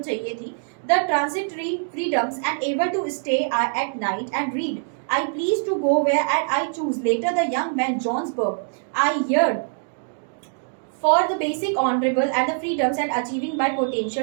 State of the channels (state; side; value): silent; left; digital silence